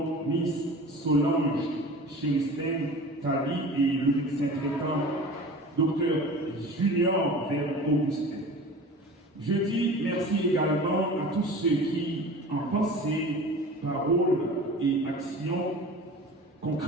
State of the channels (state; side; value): normal; both; correlation 0.38